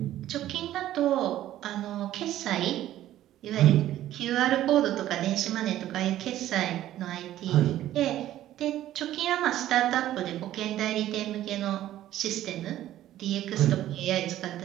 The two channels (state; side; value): quieter; left; 13.2 dB